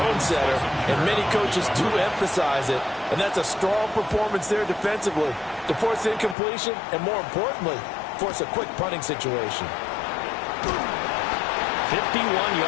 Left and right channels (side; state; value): right; drops out; at 6.4 s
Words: setter, and many coaches do emphasize it. And that's a strong performance there defensively to force incompletion and, more importantly, force a quick punting situation. 51